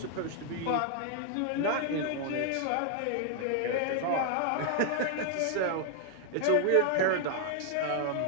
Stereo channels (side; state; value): both; different; correlation 0.00